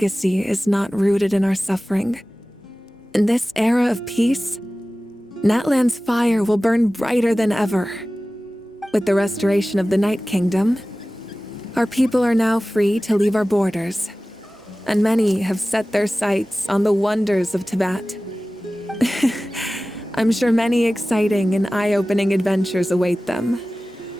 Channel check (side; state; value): both; normal; correlation 0.97